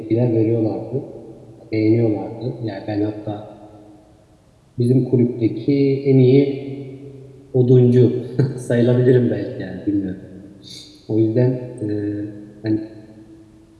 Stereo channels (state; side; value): identical; both; correlation 1.00